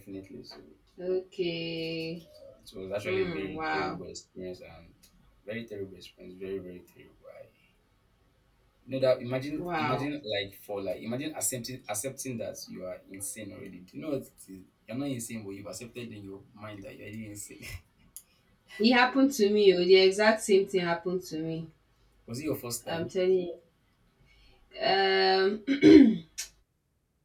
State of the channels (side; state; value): both; identical; correlation 1.00